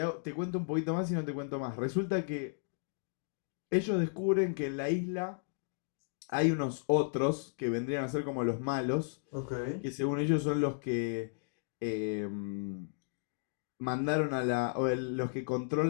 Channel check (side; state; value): right; silent; digital silence